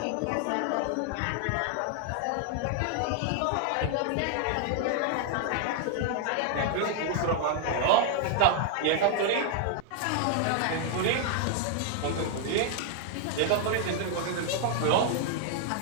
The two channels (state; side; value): different; both; correlation 0.00